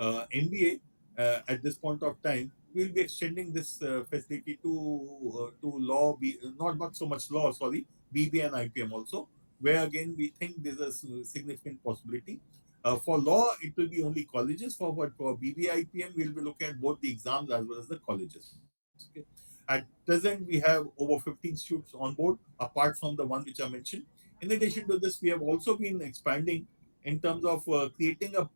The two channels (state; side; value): inverted; both; correlation -1.00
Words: at this point of time, we'll be extending this facility to law, not so much law, sorry, BB and IPM also, where again we think there's a significant possibility. For law, it will be only colleges. For BBIPM, we'll be looking at both the exams as well as the colleges. Okay. At present, we have over 15 students on board, apart from the one which I mentioned. In addition to this, we have also been expanding in terms of creating a